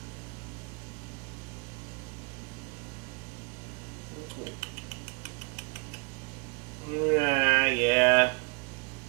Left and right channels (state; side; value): quieter; left; 33.1 dB